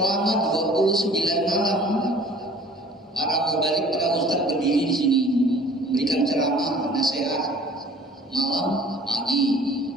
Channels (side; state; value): both; normal; correlation 0.50